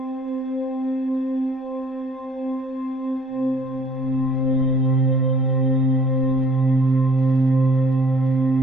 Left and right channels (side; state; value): both; normal; correlation 0.57